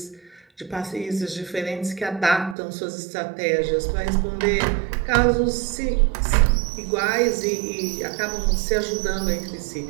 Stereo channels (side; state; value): left; drops out; at 2.6 s